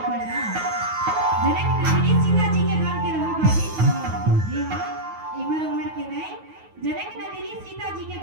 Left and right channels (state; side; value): late; left; 9.4 ms